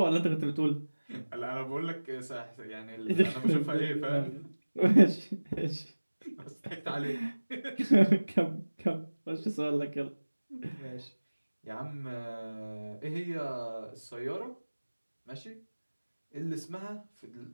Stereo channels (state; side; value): inverted; both; correlation -1.00